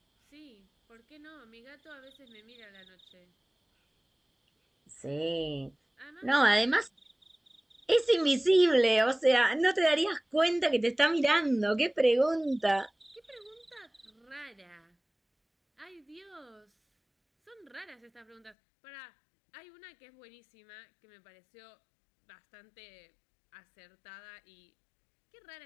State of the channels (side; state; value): right; drops out; at 18.6 s